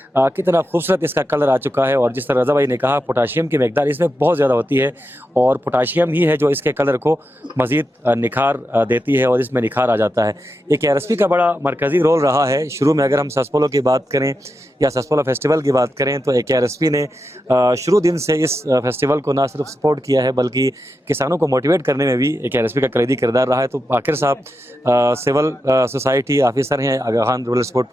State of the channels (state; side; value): normal; both; correlation 0.87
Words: کتنا خوبصورت اس کا کلر آ چکا ہے. اور جس طرح رضا بھائی نے کہا پوٹاشیم کی مقدار اس میں بہت زیادہ ہوتی ہے, اور پوٹاشیم ہی ہے جو اس کے کلر کو مزید نکھار دیتی ہے, اور اس میں نکھار آ جاتا ہے. ایک KRSP کا بڑا مرکزی رول رہا ہے. شروع میں اگر ہم سسپولو کی بات کریں یا سسپولو فیسٹیول کی بات کریں تو KRSP نے شروع دن سے اس فیسٹیول کو نہ صرف سپورٹ کیا ہے بلکہ کسانوں کو موٹیویٹ کرنے میں بھی KRSP کا کلیدی کردار رہا ہے. تو عاقر صاحب سول سوسائٹی آفیسر ہیں آغا خان رورل سپورٹ